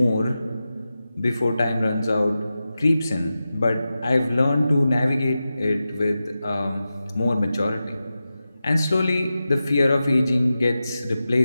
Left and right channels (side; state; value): both; inverted; correlation -0.93